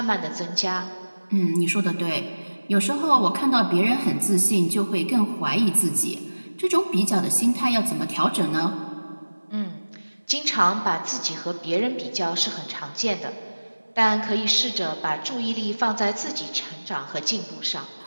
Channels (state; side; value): inverted; both; correlation -1.00